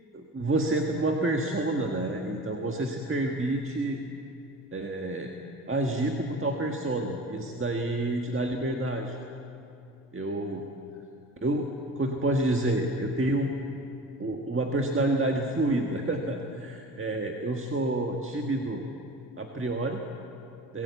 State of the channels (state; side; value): normal; both; correlation 0.38